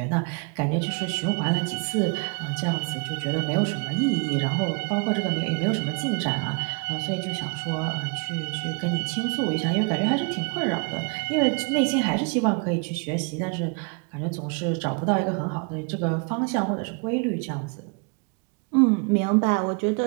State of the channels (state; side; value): quieter; left; 35.1 dB